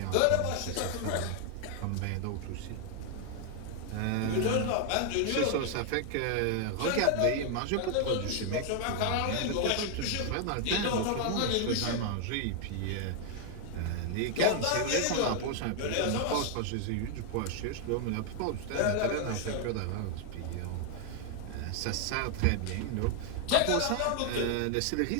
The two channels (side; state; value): both; different; correlation 0.00